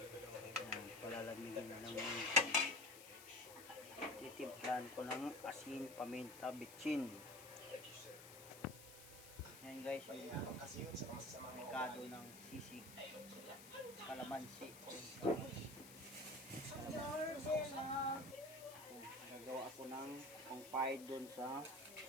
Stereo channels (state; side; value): noise; left; hiss, 15 dB below the sound